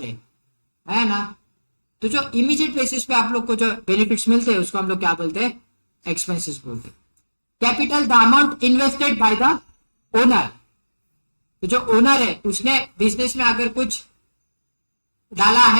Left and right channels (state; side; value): inverted; both; correlation -1.00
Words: है ना। तो जो इमीडिएट बेसिस पे आप लोग को जो बेनिफिट्स मिलते हैं उसको हम लोग क्या बोलते हैं? एक्सपेंसेस बोलते हैं। Capital the amount invested by the owner. तो जो ओनर है उसने बिजनेस में अगर कुछ डाला